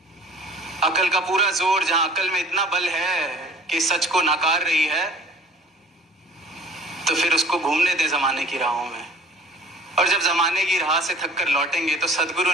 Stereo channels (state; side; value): normal; both; correlation 0.48